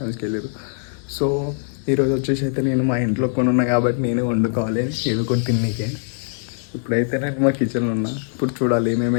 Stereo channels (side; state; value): right; silent; digital silence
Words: వెళ్ళారు. సో ఈరోజు వచ్చేసి అయితే నేను మా ఇంట్లో కొని ఉన్నా కాబట్టి నేనే వండుకోవాలి ఏదో కొన్ని తిన్నీకే. ఇప్పుడైతే నేను మా కిచెన్లో ఉన్నా. ఇప్పుడు చూడాలి